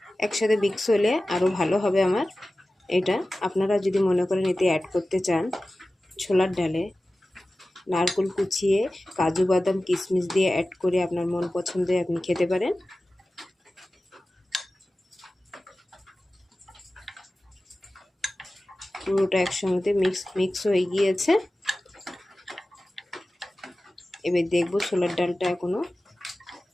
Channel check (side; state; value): both; normal; correlation 0.96